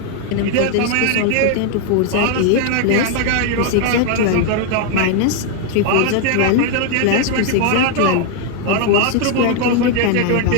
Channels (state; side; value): different; both; correlation 0.00